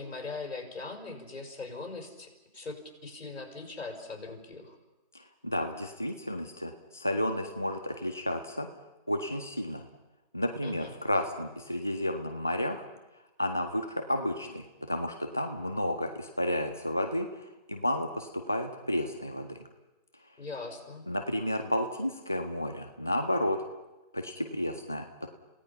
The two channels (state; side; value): inverted; both; correlation -0.78